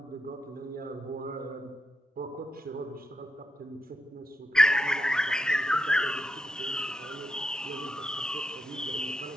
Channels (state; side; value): normal; both; correlation 0.84